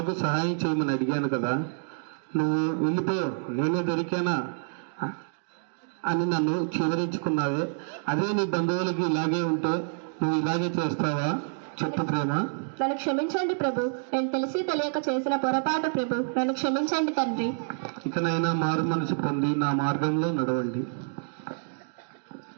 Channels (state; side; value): silent; left; digital silence